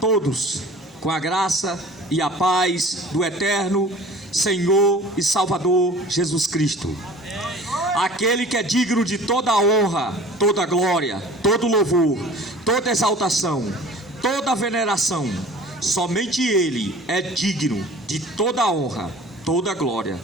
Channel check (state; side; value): normal; both; correlation 0.44